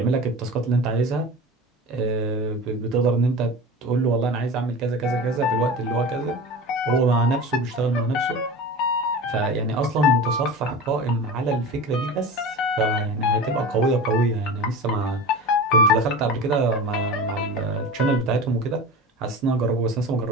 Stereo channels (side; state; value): both; normal; correlation 0.32